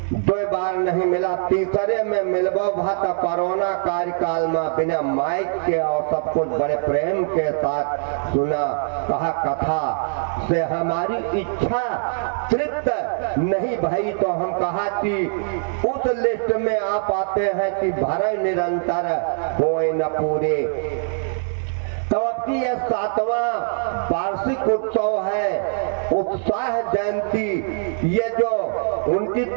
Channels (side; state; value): left; silent; 62 dB below the other